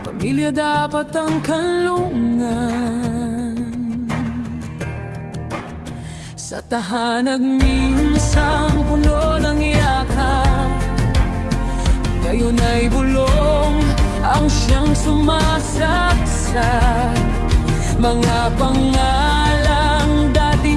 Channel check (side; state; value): both; identical; correlation 1.00